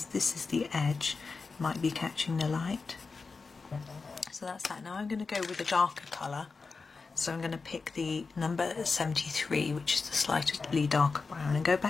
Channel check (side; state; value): right; quieter; 4.4 dB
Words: this is the edge, might be catching the light. So that's that. Now I'm going to go with a darker colour, so I'm going to pick the number 73, which is the slightly darker brown, and go